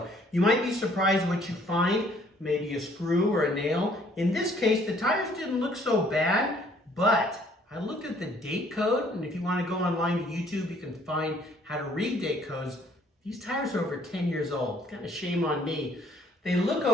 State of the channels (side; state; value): both; normal; correlation 0.61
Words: You might be surprised what you find, maybe a screw or a nail. In this case, the tires didn't look so bad, but I looked at the date code, and if you want to go online to YouTube, you can find how to read date codes. These tires are over 10 years old. Kind of shame on me. They look